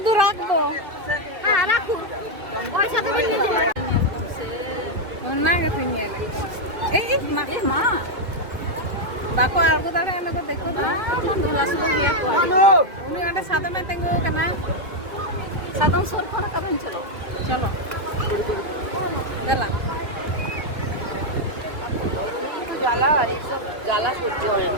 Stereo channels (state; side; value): late; left; 2.5 ms